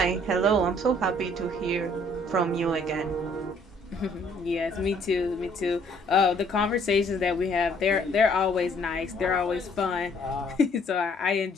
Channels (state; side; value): normal; both; correlation 0.62